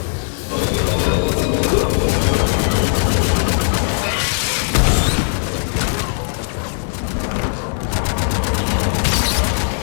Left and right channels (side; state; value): right; silent; 67 dB below the other